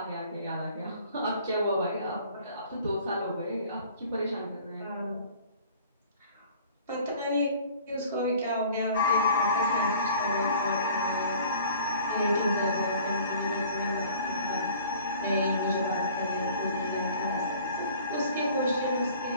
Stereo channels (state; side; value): inverted; both; correlation -0.50